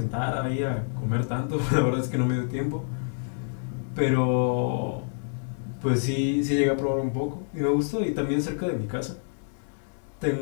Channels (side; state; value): right; silent; digital silence